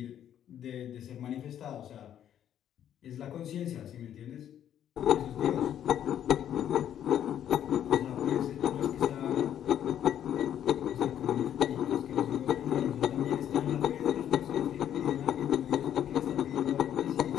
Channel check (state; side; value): quieter; right; 10.3 dB